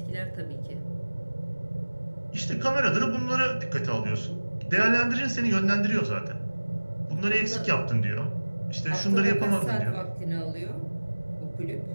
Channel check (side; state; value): both; inverted; correlation -1.00